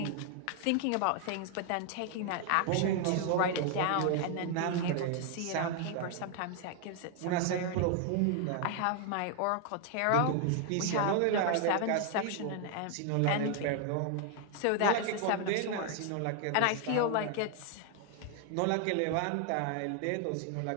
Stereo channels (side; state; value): both; different; correlation 0.00